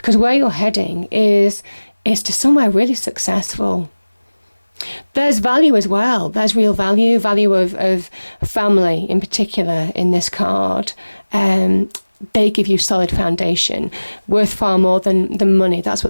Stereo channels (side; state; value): both; inverted; correlation -1.00